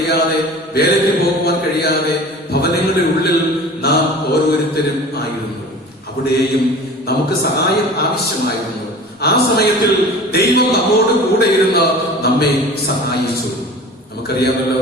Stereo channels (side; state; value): both; normal; correlation 0.40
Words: വേലയ്ക്ക് പോകുവാൻ കഴിയാതെ ഭവനങ്ങളുടെ ഉള്ളിൽ നാം ഓരോരുത്തരും ആയിരുന്നു. അവിടെയും നമുക്ക് സഹായം ആവശ്യമായിരുന്നു. ആ സമയത്തിൽ ദൈവം നമ്മോട് കൂടെ ഇരുന്ന് നമ്മെ സഹായിച്ചു.